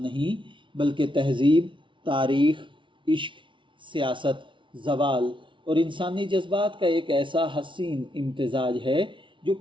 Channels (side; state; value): left; late; 0.24 ms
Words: نہیں بلکہ تہذیب، تاریخ، عشق، سیاست، زوال اور انسانی جذبات کا ایک ایسا حسین امتزاج ہے جو